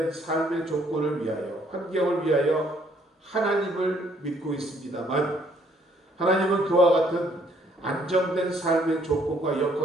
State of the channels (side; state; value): both; normal; correlation 0.65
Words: 삶의 조건을 위하여 환경을 위하여 하나님을 믿고 있습니다만 하나님은 그와 같은 안정된 삶의 조건과